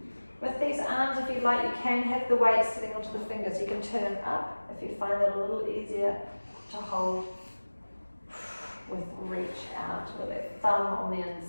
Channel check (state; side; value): inverted; both; correlation -1.00